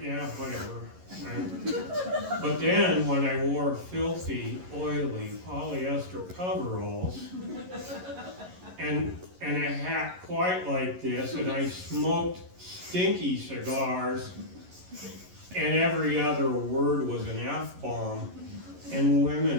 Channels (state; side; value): late; left; 11 ms